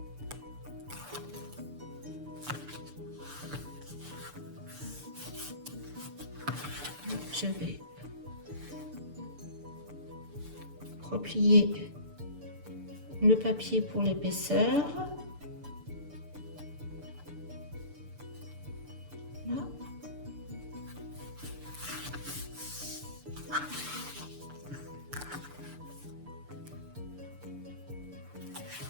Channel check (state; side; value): late; left; 6.8 ms